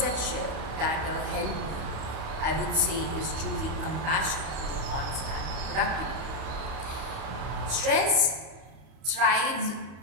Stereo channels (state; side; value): late; left; 31 ms